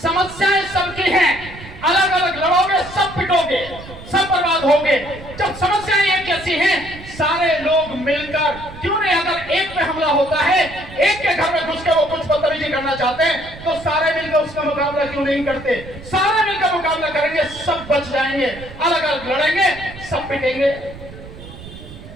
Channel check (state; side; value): noise; right; rumble, 16 dB below the sound